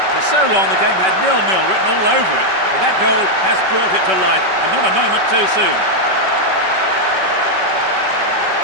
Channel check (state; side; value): late; left; 5.3 ms